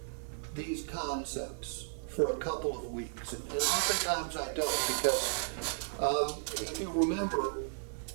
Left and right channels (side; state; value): left; silent; digital silence